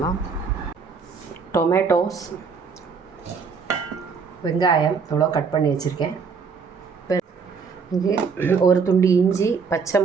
டொமேட்டோஸ், வெங்காயம் எவ்வளோ கட் பண்ணி வச்சுருக்கேன். இங்கே ஒரு துண்டு இஞ்சி, பச்சை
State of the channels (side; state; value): left; quieter; 5.4 dB